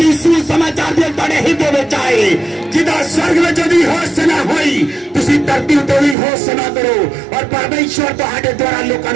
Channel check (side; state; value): left; drops out; at 6.2 s